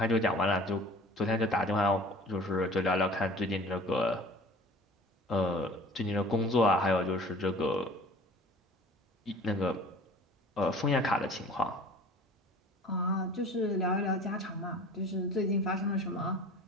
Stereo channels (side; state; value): both; normal; correlation 0.45